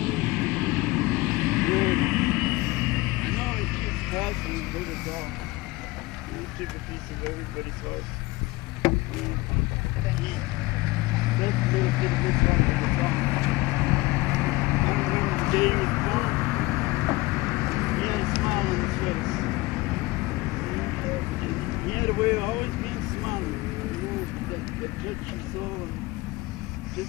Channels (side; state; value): right; quieter; 21.4 dB